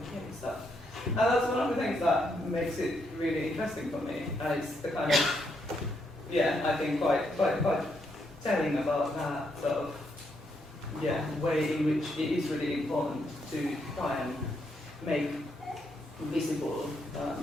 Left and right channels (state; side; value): normal; both; correlation 0.77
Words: stuff. And that's one of the things that makes it really interesting for me. It's the kind of, I think quite telling about that sort of, way in which it is really important to try and make visible,